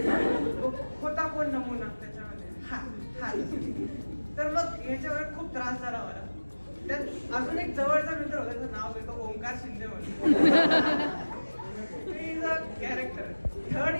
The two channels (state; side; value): inverted; both; correlation -1.00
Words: होता कोण नमुना त्याच्यामध्ये हा. तर मग याच्यावर खूप त्रास झाला मला. त्यात अजून एक जवळचा मित्र होता, त्याचं नाव घेतो ओंकार शिंदे म्हणून. कॅरेक्टर 3rd